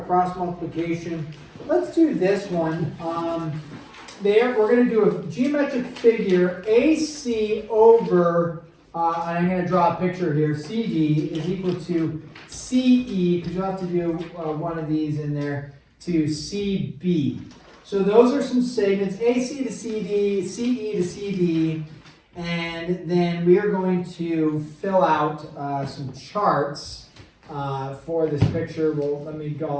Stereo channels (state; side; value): identical; both; correlation 1.00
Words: cross multiplication. Let's do this one. We're going to do a geometric figure, AC over, and I'm going to draw a picture here, CD is equal to CE, because you'll have to do one of these in there, to CB. So those are some segments, AC to CD, CE to CD, and then we are going to fill out some charts for this picture. Well, let me